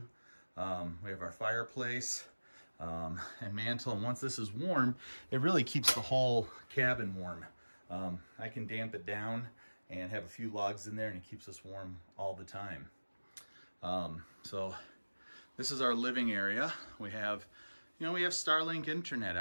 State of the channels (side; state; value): both; inverted; correlation -1.00